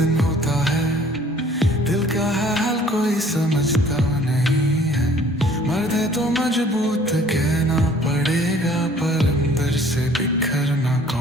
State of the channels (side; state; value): both; normal; correlation 0.55